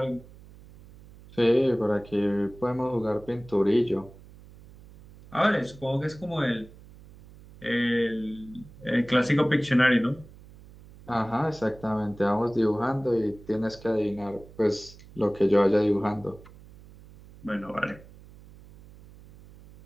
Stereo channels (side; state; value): right; noise; hum, 21 dB below the sound